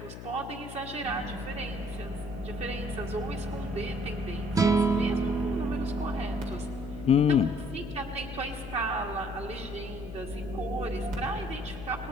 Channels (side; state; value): left; noise; hum, 11 dB below the sound